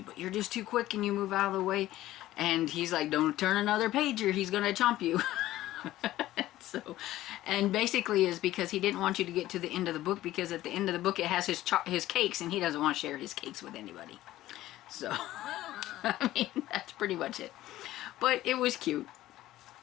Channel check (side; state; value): right; quieter; 15.1 dB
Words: but you're just too quick and you move out of the way. And he's like, don't turn another page or he's going to chomp you. So, and basically is because he didn't want you to get to the end of the book, because at the end of the book it has his cakes and he doesn't want to share his cakes with anybody. So, I mean, that's pretty much it. But it was cute.